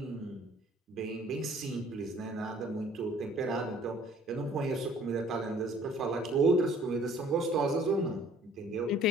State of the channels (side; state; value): both; normal; correlation 0.55